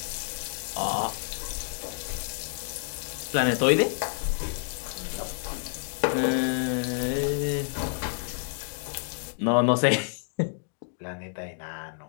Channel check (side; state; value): right; silent; digital silence